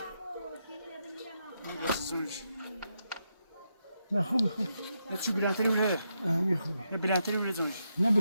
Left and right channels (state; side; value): inverted; both; correlation -0.83